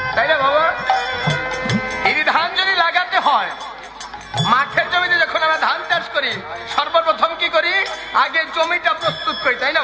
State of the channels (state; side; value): identical; both; correlation 1.00